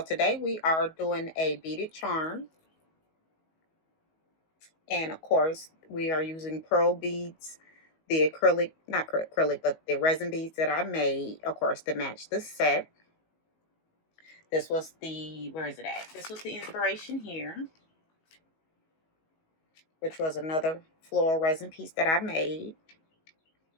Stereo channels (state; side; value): late; right; 19 ms